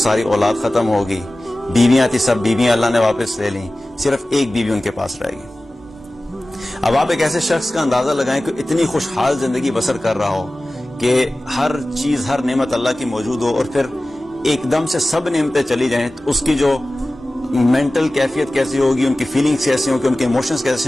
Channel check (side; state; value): both; normal; correlation 0.97